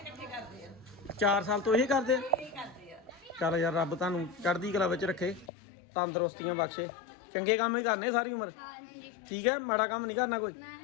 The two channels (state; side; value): drops out; right; at 5.5 s